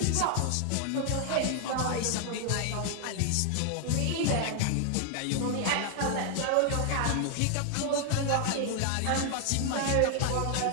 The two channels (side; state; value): both; different; correlation 0.00